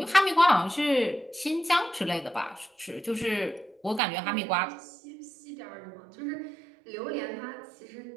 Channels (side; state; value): left; drops out; at 4.0 s